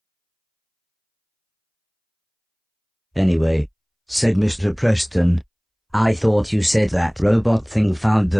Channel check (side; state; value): both; identical; correlation 1.00